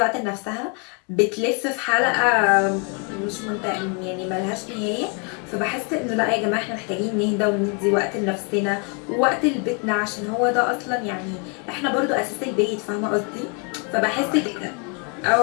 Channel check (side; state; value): right; quieter; 36.5 dB